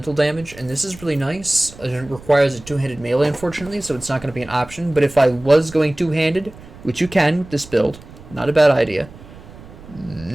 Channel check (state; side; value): noise; right; rumble, 19 dB below the sound